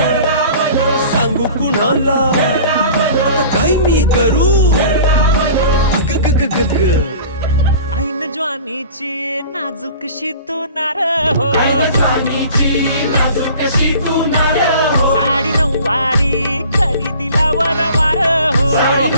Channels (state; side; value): inverted; both; correlation -0.44